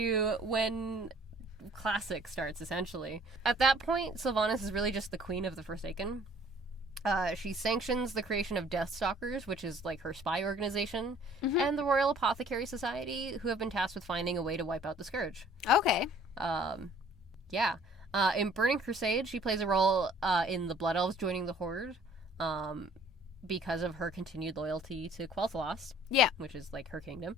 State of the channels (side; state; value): both; normal; correlation 0.55